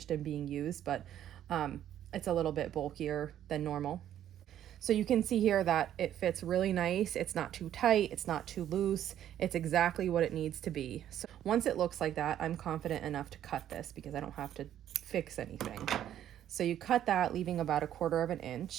and being used, but it's a little bit bulkier than normal. So you can see here that it fits really nice. It's not too tight, it's not too loose. It's exactly what it needs to be. So once it looks like that, I'm confident enough to cut this because I don't have to fix anything. So you cut that, leaving about 1/4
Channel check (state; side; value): quieter; left; 11.1 dB